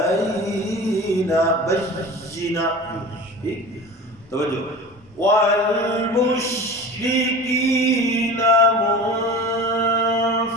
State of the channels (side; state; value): both; normal; correlation 0.35